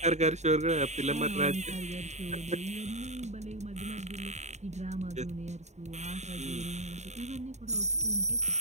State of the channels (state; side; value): late; left; 0.33 ms